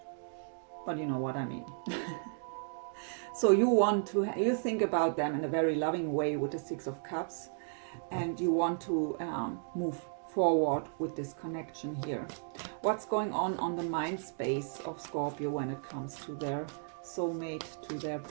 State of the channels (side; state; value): left; silent; digital silence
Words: but you know what I mean. So you think about them in a very loving way with the 6 of Cups, and you want to move forward with this connection here. What's going on the mind space of Scorpio when it comes to their soulmate, to their